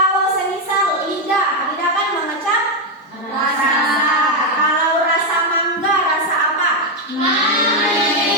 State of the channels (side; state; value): both; normal; correlation 0.05